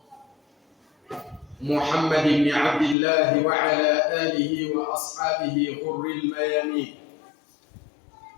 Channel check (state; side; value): drops out; right; at 3.0 s